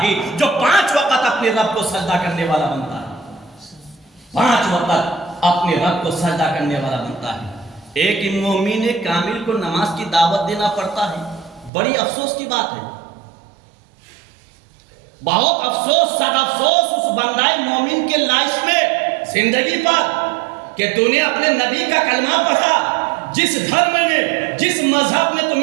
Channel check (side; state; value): left; drops out; at 11.7 s